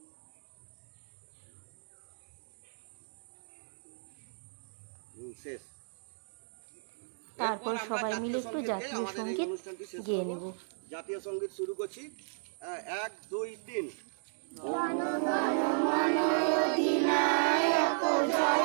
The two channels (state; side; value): silent; left; digital silence